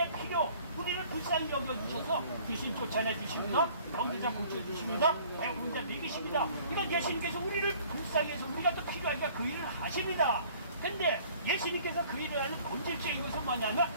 필요, 우리를 불쌍히 여겨주셔서 귀신 쫓아내 주십니다. 병든 자 고쳐주십니다. 배고픈 자 먹이십니다. 이건 예수님께서 우리를 불쌍히 해서 우리가 또 필요하니까 그 일을 하십니다. 근데 예수님께서 그 일을 하는 본질적인 것은 뭐냐면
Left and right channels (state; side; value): inverted; both; correlation -0.53